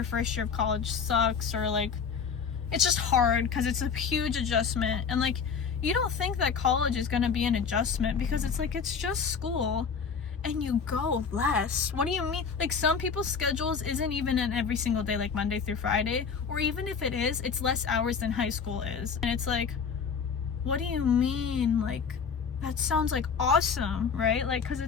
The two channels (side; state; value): right; quieter; 6.1 dB